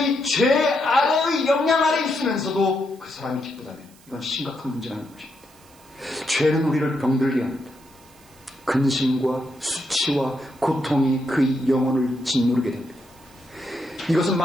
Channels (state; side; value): noise; right; hiss, 27 dB below the sound